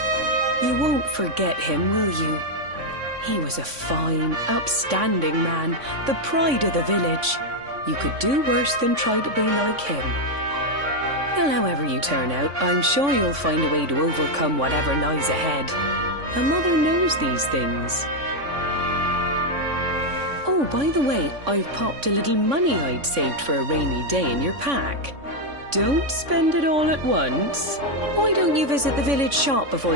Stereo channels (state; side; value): late; left; 3.5 ms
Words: You won't forget him, will you? He was a fine, upstanding man, the pride of the village. You could do worse than try to be like him. Well, however you turn out, I'm sure you'll find a way to overcome whatever lies ahead. A mother knows these things. Oh, by the way, I've popped a little money I'd saved for a rainy day in your pack. Don't spend it all at once. Why don't you visit the village shop before